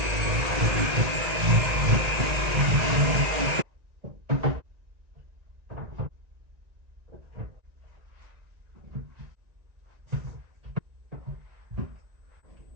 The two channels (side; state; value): left; late; 1.9 ms